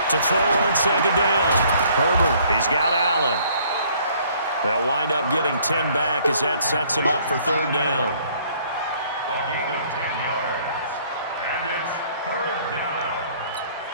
To throw on second down. Herbert, he's got Allen. They'll wind up getting 10 back as that sets him up for third down. A gain of 10 yards. And it's third down.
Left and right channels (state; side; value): inverted; both; correlation -0.60